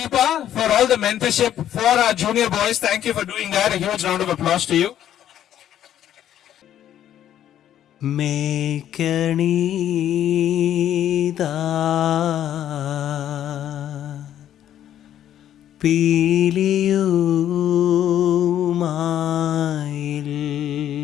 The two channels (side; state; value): right; quieter; 11.1 dB